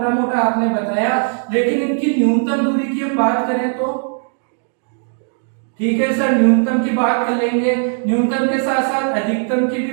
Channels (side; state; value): left; silent; 60 dB below the other